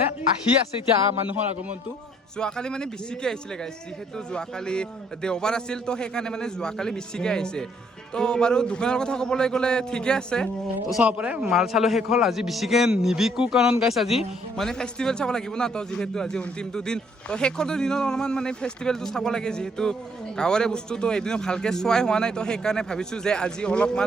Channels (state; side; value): normal; both; correlation 0.66